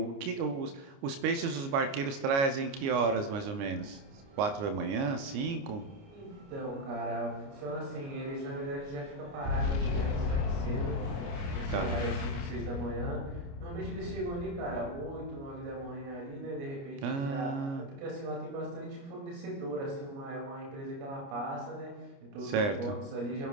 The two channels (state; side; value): late; left; 29 ms